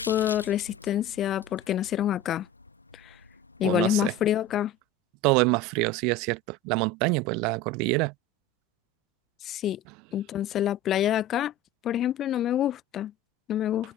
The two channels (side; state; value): both; normal; correlation 0.34